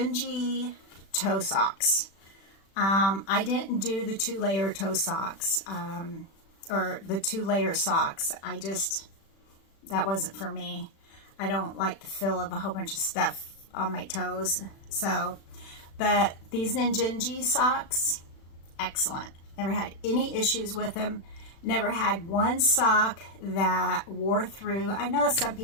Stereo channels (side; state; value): right; late; 36 ms